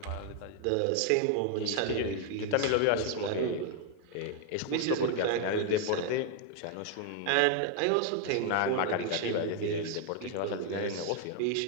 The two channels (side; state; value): both; different; correlation 0.00